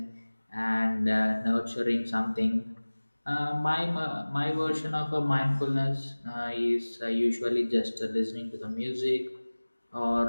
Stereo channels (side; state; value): both; inverted; correlation -1.00